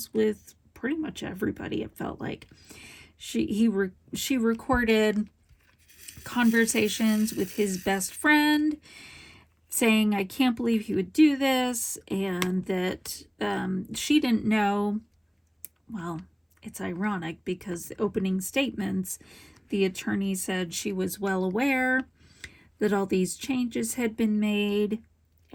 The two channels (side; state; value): both; identical; correlation 1.00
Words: with pretty much everybody, it felt like. She recorded conversations with his best friend, saying, I can't believe he would do this, and that she didn't know. Well, it's ironic because the opening statements, the attorney said she was well aware that all these changes had been made,